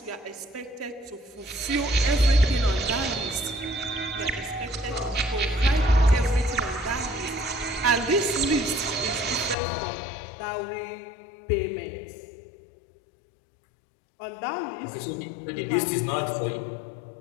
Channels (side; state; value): right; drops out; at 9.6 s